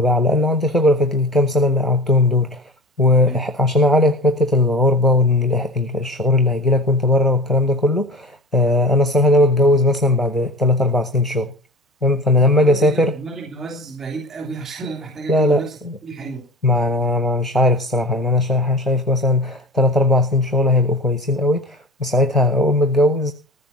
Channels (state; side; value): normal; both; correlation 0.35